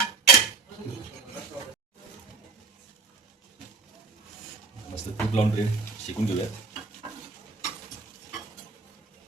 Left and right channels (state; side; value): quieter; left; 4.3 dB